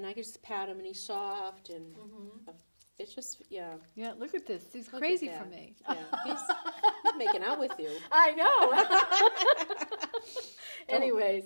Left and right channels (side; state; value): both; inverted; correlation -1.00